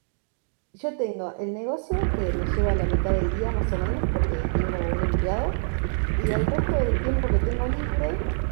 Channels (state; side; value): silent; left; digital silence